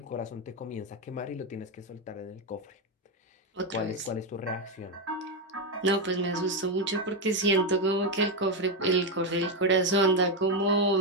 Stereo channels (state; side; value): normal; both; correlation 0.07